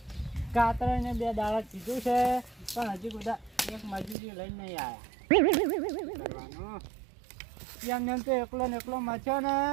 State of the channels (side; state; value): left; drops out; at 4.2 s